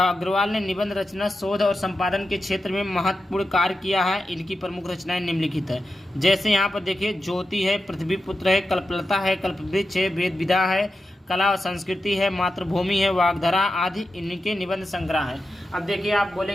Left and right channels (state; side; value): normal; both; correlation 0.90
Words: ने निबंध रचना, शोध और संपादन के क्षेत्र में महत्वपूर्ण कार्य किया है। इनकी प्रमुख रचनाएं निम्नलिखित है। जैसे यहाँ पर देखिए, ज्योति है, पृथ्वीपुत्र है, कल्पलता है, कल्पवृक्ष है, वेद विधा है, कला और संस्कृति है, मातृभूमि है, वाग्धारा आदि इनके निबंध संग्रह है। अब देखिए आप